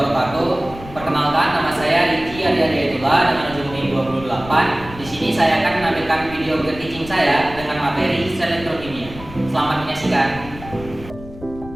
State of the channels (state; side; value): noise; left; rumble, 15 dB below the sound